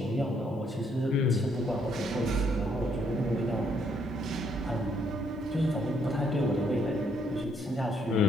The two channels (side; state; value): both; normal; correlation 0.70